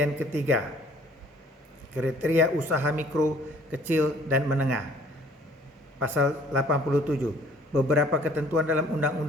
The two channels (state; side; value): normal; both; correlation 0.56